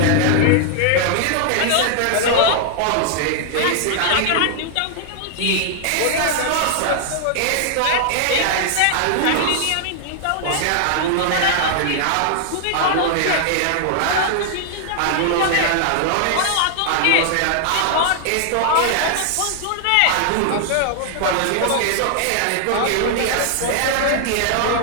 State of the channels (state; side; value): different; both; correlation 0.00